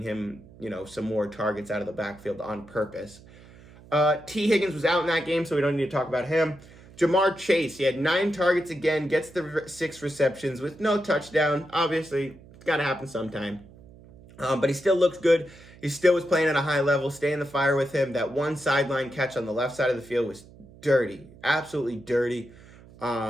him, some more targets out of the backfield on purpose. T. Higgins was out in that game, so we don't need to talk about him. Jamar Chase, he had 9 targets again, gets the 6 receptions with no touchdown. Obviously, it's got to happen sometime. But he still looks good. He still was playing at a high level. Stay in the fire with him. That one sideline catch on the left side of the field was dirty. Absolutely dirty.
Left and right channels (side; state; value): right; noise; hum, 22 dB below the sound